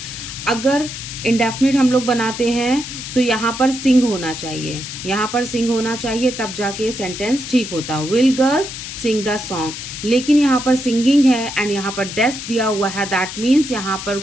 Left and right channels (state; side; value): noise; left; hiss, 9 dB below the sound